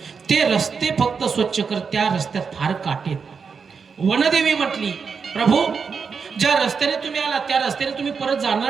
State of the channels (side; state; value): left; quieter; 5.7 dB